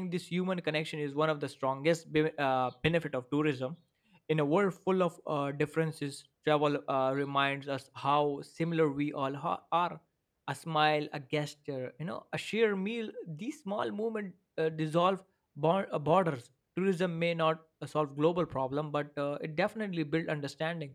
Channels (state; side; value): identical; both; correlation 1.00